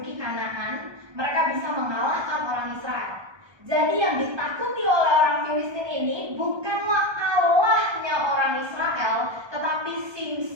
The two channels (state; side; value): late; left; 1.3 ms